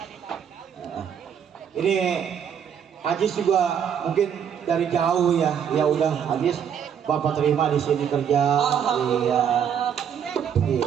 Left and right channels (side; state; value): left; quieter; 8.2 dB